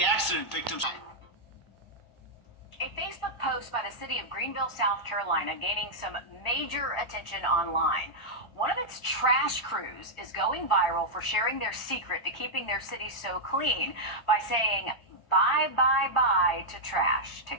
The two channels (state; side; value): late; right; 1.4 ms